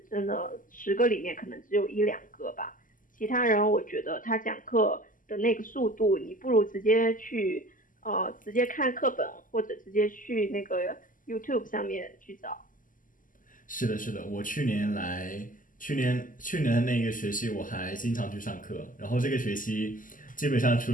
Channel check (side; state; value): right; late; 0.39 ms